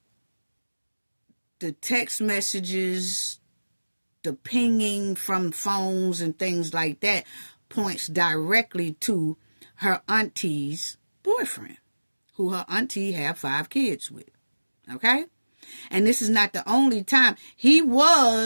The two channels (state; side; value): inverted; both; correlation -1.00